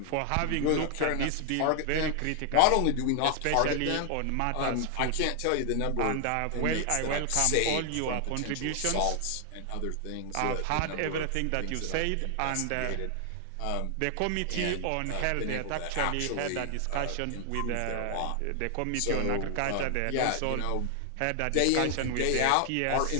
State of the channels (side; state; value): both; different; correlation 0.00